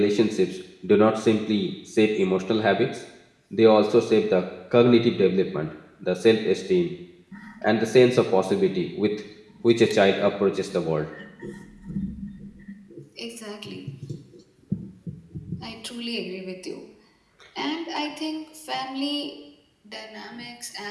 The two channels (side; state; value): both; identical; correlation 1.00